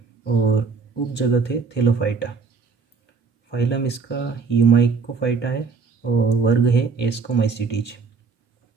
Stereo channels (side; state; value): left; quieter; 4.9 dB